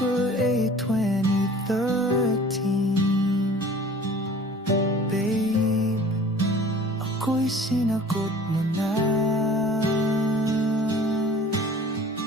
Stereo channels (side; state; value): both; normal; correlation 0.46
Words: 8, 2013, babe, ako'y sinagot mo na.